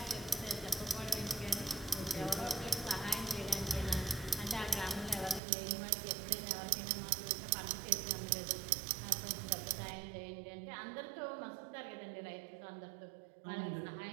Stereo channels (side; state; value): left; drops out; at 5.4 s